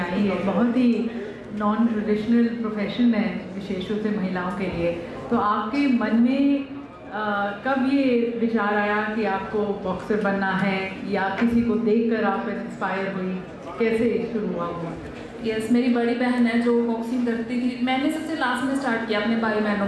है, बहुत ही नॉन ट्रेडिशनल प्रोफेशन है, विशेष रूप से महिलाओं के लिए। तो आपके मन में कब ये विचार आया कि आपको बॉक्सर बनना है, या किसी को देखकर आप इंस्पायर हुई, कैसे शुरू हुआ? यस, मेरी बड़ी बहन है जो बॉक्सिंग करती थी। मैंने सबसे लास्ट में स्टार्ट किया अपने भाई बहनों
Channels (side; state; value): both; identical; correlation 1.00